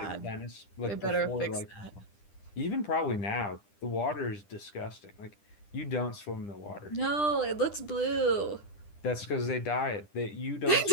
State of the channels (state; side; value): late; right; 10 ms